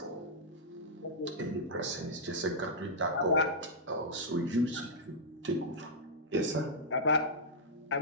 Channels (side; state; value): both; normal; correlation -0.09